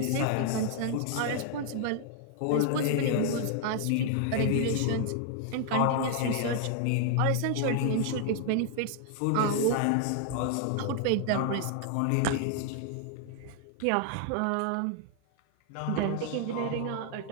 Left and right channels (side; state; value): both; different; correlation 0.00